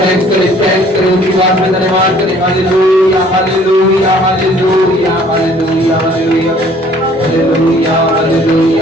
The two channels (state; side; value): normal; both; correlation 0.56